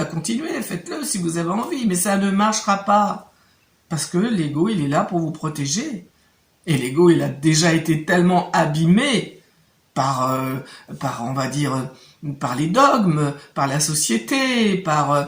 continuez, faites-le si vous avez envie, mais ça ne marchera pas. Parce que l'ego, il est là pour vous protéger. Et l'ego, il a déjà été tellement abîmé par, on va dire, par les dogmes, par la société, par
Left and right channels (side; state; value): both; identical; correlation 1.00